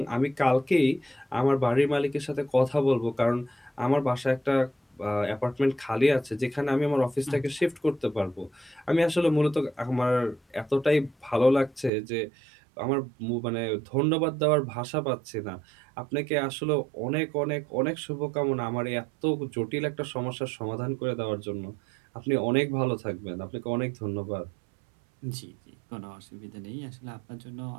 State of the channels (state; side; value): drops out; left; at 11.9 s